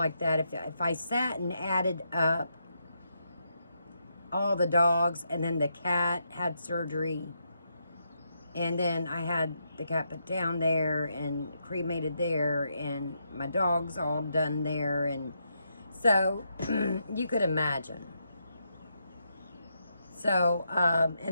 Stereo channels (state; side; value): inverted; both; correlation -0.81